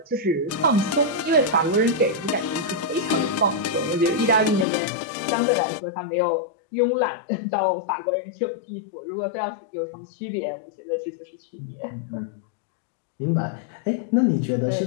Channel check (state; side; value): drops out; right; at 4.7 s